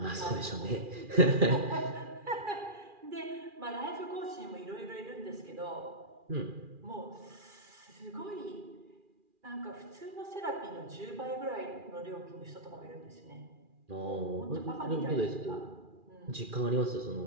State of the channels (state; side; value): late; left; 2.4 ms